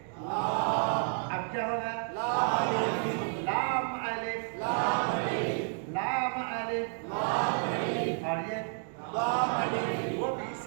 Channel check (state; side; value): silent; left; 57 dB below the other